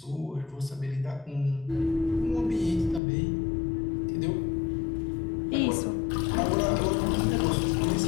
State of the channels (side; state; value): right; drops out; at 3.0 s